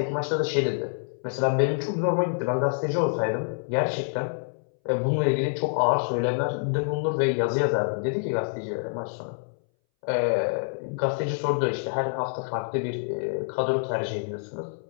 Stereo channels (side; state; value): right; silent; 60 dB below the other